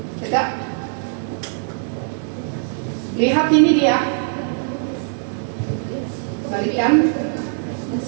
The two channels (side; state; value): left; silent; digital silence